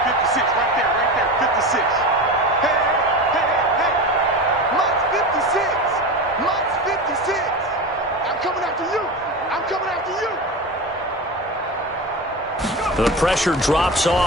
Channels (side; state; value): both; normal; correlation 0.25